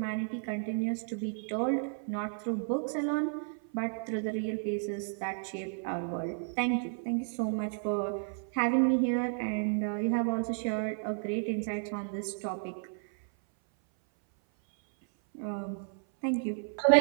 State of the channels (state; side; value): silent; left; 56 dB below the other